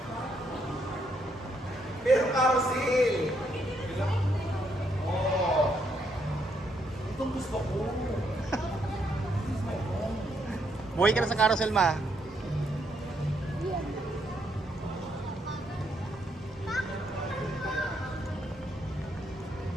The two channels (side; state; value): both; normal; correlation 0.75